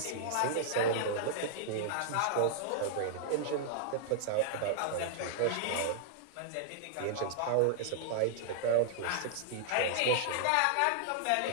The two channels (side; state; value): both; different; correlation -0.01